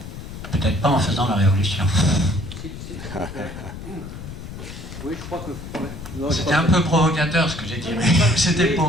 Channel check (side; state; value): left; noise; rumble, 11 dB below the sound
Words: peut-être pas en faisant la révolution. Oui, je crois que... C'était un peu provocateur ce que j'ai dit, mais c'était